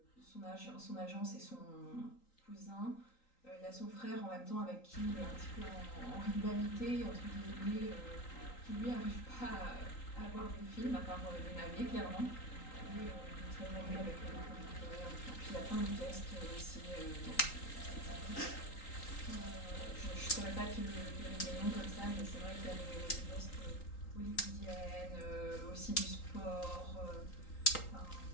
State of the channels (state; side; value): late; right; 3.8 ms